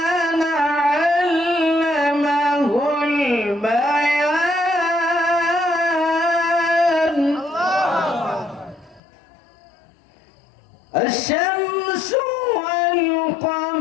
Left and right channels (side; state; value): right; drops out; at 9.0 s